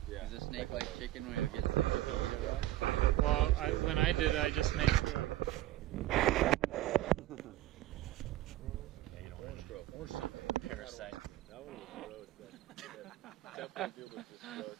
Yeah. Is a snake like chicken when you get sick if you eat it raw? Well, when I did, I just made sure. Parasite. That one was gross. Temple Doom was just gross.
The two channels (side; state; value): left; quieter; 14.8 dB